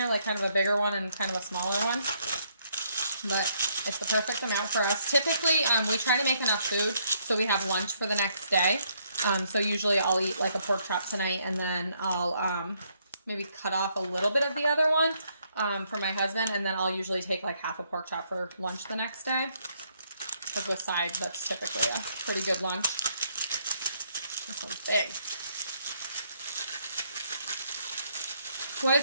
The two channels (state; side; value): inverted; both; correlation -0.71